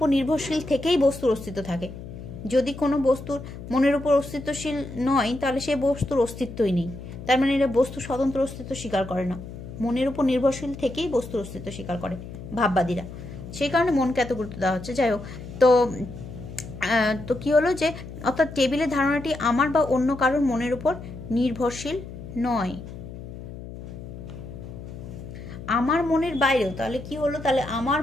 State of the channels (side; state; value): left; noise; hum, 12 dB below the sound